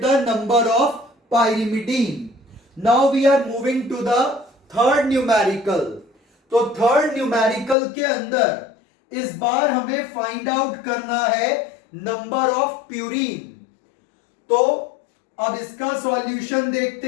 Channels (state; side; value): drops out; right; at 7.8 s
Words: the number of pyrimidine. Now we are moving to the third numerical. तो थर्ड न्यूमेरिकल के अंदर इस बार हमें फाइंड आउट करना है नंबर ऑफ प्यूरीन। तो अब इसका सॉल्यूशन